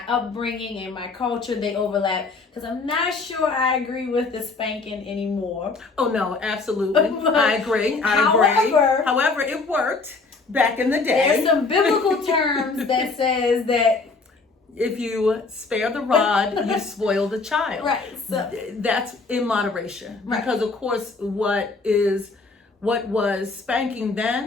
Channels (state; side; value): quieter; right; 4.0 dB